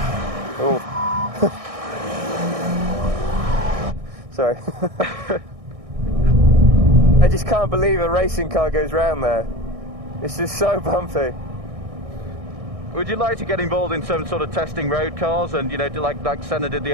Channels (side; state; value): left; late; 1.6 ms